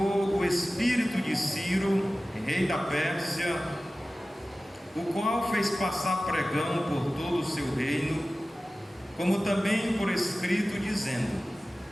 o espírito de Ciro, rei da Pérsia, o qual fez passar pregão por todo o seu reino, como também por escrito, dizendo,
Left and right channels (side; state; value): both; normal; correlation 0.96